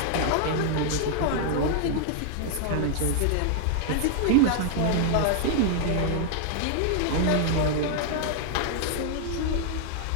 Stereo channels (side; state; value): both; different; correlation 0.00